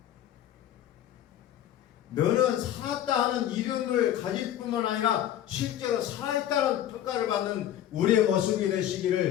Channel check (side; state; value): right; quieter; 11.5 dB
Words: 너는 살았다 하는 이름을 가질 뿐만 아니라 실제로 살아있다는 평가를 받는 우리의 모습이